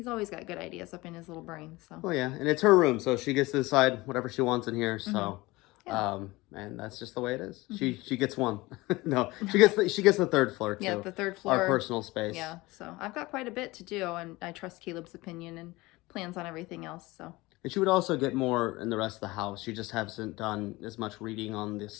always got good ideas up in his little brain. So. Well, yeah, and it's her room, so she gets to decide whatever she wants in here. So. Yeah. And that's just the way it is. She gets one. No, she gets the third floor too. Yeah, the third floor. Our personal space. Yeah, so I've got quite a bit to do, and I trust Caleb's opinion and plans on everything else. So. And she would also get more in the rest of the house. She just hasn't done as much reading on the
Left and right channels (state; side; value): quieter; right; 21.1 dB